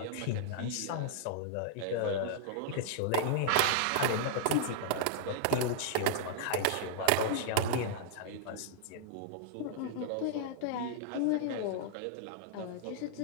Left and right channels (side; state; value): both; different; correlation -0.01